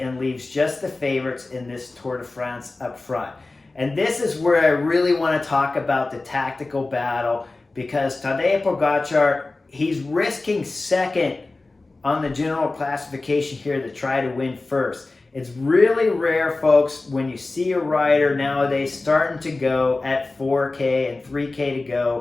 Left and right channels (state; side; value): quieter; right; 3.3 dB